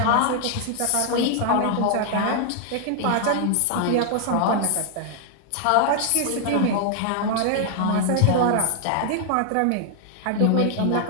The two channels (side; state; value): both; different; correlation 0.00